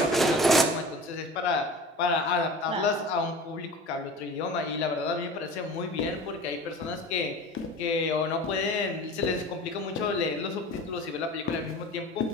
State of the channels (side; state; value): both; normal; correlation 0.38